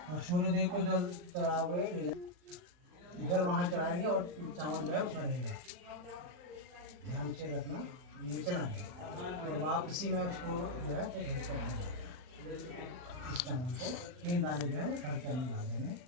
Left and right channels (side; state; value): left; late; 39 ms